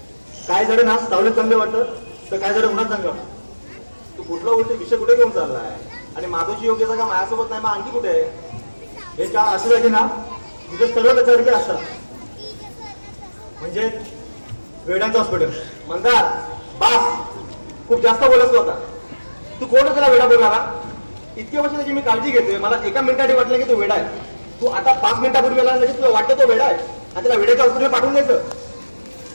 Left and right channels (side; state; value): both; inverted; correlation -1.00